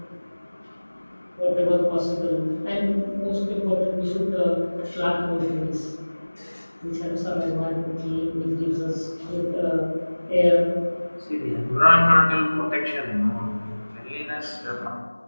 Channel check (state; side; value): inverted; both; correlation -1.00